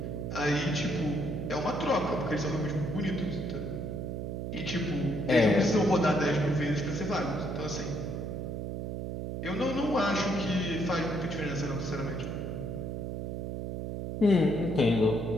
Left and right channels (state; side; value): noise; right; hum, 4 dB below the sound